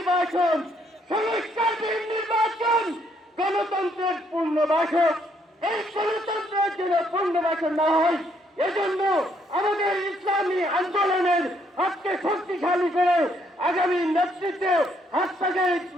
সংস্কারবিহীন নির্বাচন গণতন্ত্রের পূর্ণবাসক। এই গণতন্ত্রের জন্য পূর্ণবাসন না হয়, এজন্য আমাদের ইসলামী আন্দোলনের হাতকে শক্তিশালী করে আগামী নেতৃত্বে হাত থেকে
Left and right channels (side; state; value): both; normal; correlation 0.70